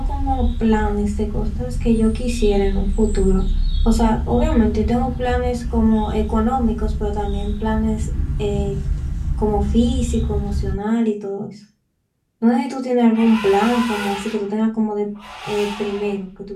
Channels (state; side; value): identical; both; correlation 1.00